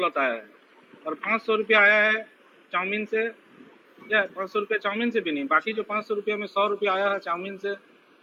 आया है, और 500 रुपया आया है चाउमीन से, या 500 रुपया चाउमीन से भी नहीं, बाकी जो 500 रुपया में 100 रुपया आया है चाउमीन से,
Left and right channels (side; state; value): both; identical; correlation 1.00